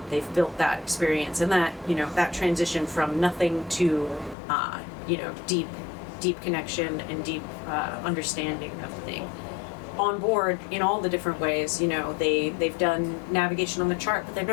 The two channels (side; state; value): right; drops out; at 4.4 s